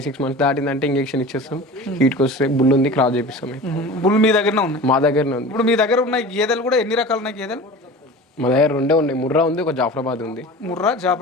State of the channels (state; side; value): normal; both; correlation 0.36